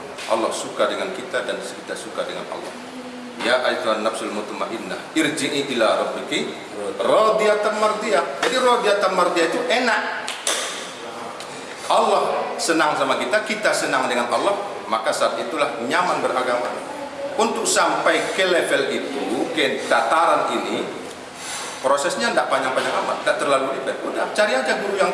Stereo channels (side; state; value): both; identical; correlation 1.00